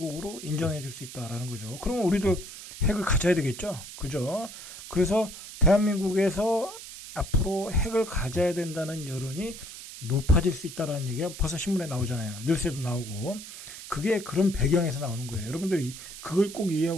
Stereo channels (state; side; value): noise; right; hiss, 13 dB below the sound